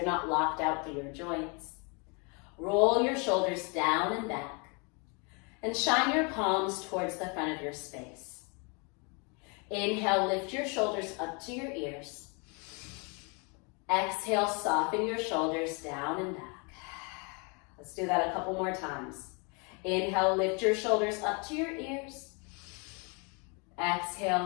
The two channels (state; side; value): quieter; right; 33.4 dB